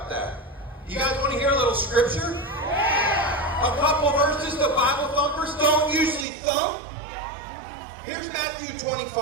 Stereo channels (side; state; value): left; drops out; at 6.2 s